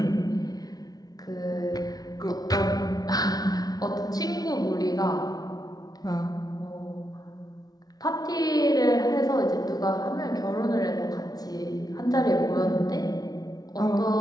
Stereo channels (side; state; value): right; late; 0.19 ms